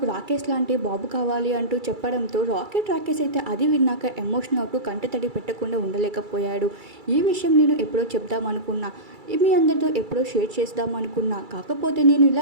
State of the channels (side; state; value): left; late; 2.3 ms